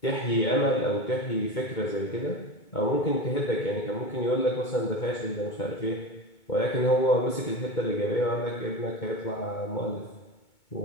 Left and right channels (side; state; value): right; late; 2.2 ms